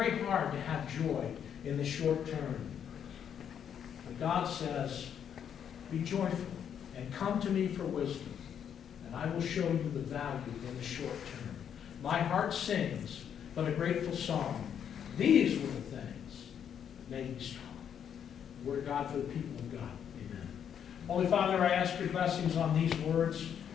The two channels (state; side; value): quieter; right; 8.5 dB